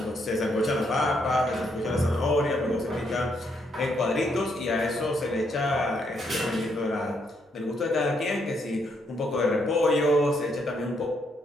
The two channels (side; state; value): both; normal; correlation 0.75